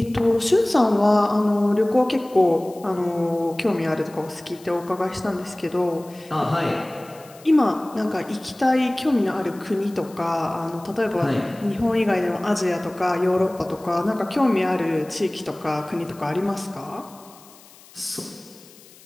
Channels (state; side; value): noise; left; hiss, 24 dB below the sound